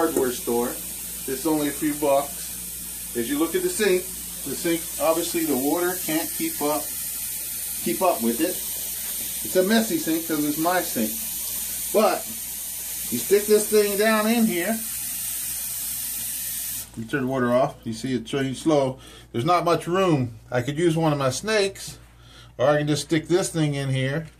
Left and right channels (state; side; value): identical; both; correlation 1.00